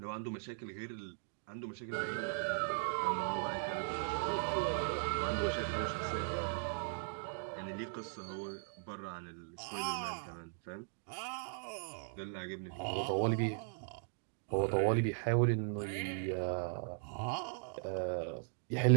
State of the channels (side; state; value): left; silent; digital silence